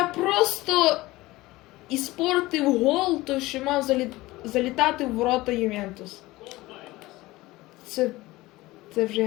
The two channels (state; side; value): quieter; right; 19.2 dB